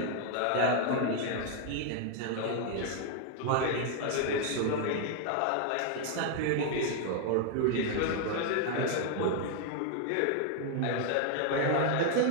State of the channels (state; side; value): different; both; correlation 0.00